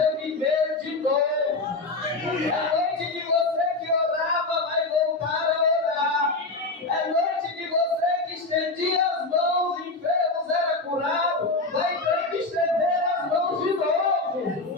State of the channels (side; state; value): right; quieter; 3.3 dB